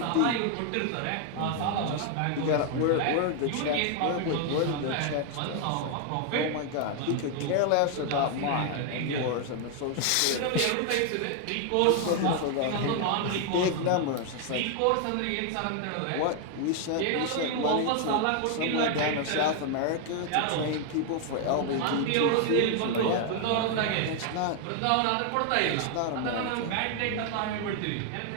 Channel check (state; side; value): different; both; correlation 0.00